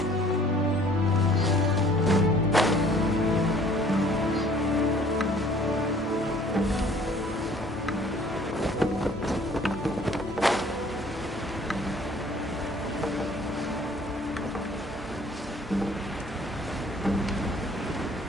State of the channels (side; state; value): both; normal; correlation 0.54